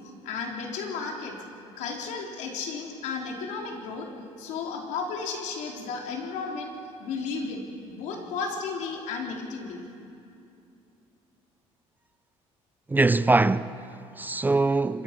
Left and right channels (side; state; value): both; normal; correlation 0.67